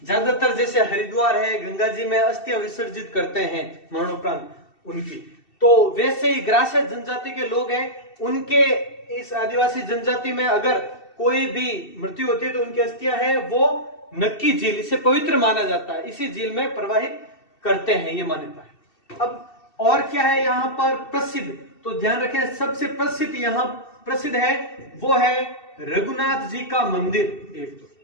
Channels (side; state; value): right; late; 2.7 ms